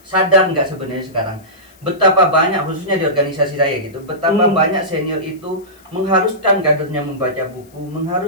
Sadar nggak sebenarnya sekarang betapa banyak, khususnya di organisasi saya gitu, betapa banyak senior itu mengharuskan kadernya membaca buku,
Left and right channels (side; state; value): left; noise; hiss, 29 dB below the sound